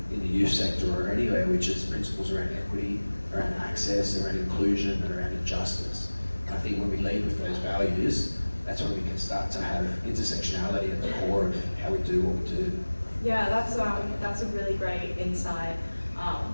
in the youth sector or anywhere, which is principles around equity, around access, around inclusion, and around justice. And I think when we lead with those values, that's when we can start to have intersectionality at the core of how we do what we do. Yeah, that's a really great insight,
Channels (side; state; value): both; inverted; correlation -1.00